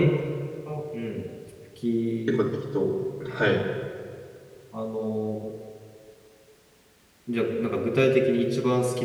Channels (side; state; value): both; identical; correlation 1.00